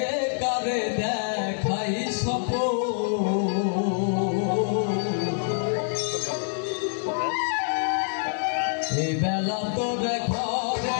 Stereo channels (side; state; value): right; silent; 61 dB below the other